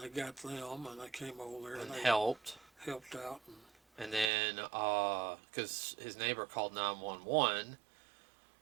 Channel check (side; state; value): left; drops out; at 4.3 s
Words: they got them, and they came over there and helped out. And then, because his neighbor called 911,